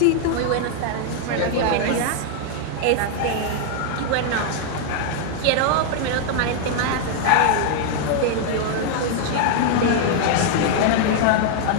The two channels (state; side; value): different; both; correlation 0.00